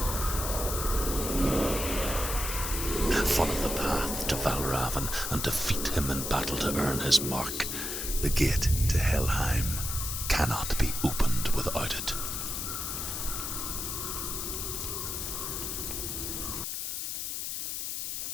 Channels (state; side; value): noise; left; hiss, 3 dB below the sound